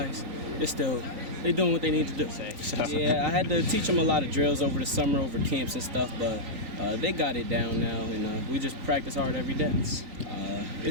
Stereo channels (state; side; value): late; left; 3.9 ms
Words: they're doing what they need to do. Yeah, I had to teach them a lot of drills over the summer, over camps and stuff, but they got it down now, and we just practice hard every day.